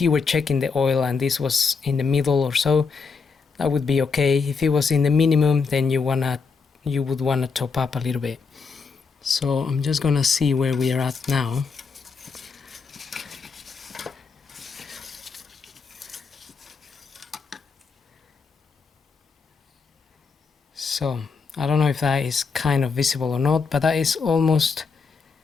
you were checking the oil and this was in the middle or so, that would be okay. If it was in the minimum, then you would wanna top up a little bit. So I'm just gonna see where we are at now. So I don't know if that is kind of visible or not, but that is almost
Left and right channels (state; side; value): quieter; right; 5.0 dB